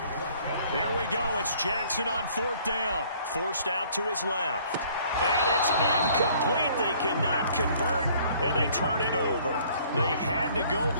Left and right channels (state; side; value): inverted; both; correlation -0.58